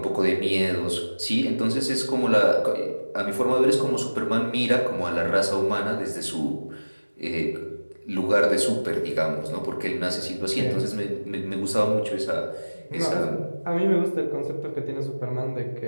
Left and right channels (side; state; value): both; inverted; correlation -1.00